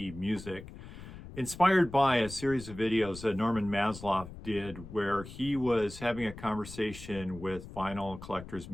music, inspired by a series of videos that Norman Maslow did where he was having a conversation with vinyl collectors,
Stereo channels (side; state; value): left; noise; rumble, 14 dB below the sound